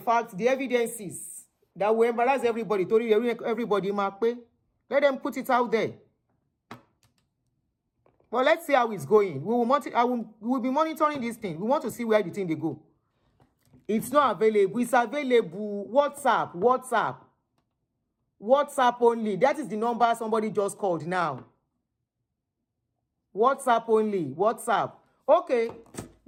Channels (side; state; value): both; identical; correlation 1.00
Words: the evidences that will embarrass everybody. Everybody, let them put it out there. But let's see how it's going. We will be monitoring this thing. We want to see where the thing they go. It's not available. It's available. WhatsApp only. That is the number somebody just called now. WhatsApp only. WhatsApp. Okay.